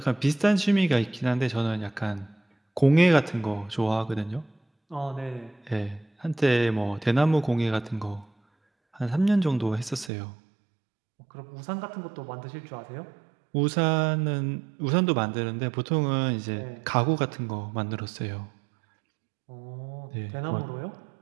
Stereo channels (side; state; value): left; drops out; at 10.1 s